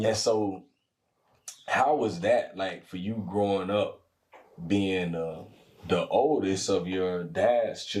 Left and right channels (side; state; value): both; identical; correlation 1.00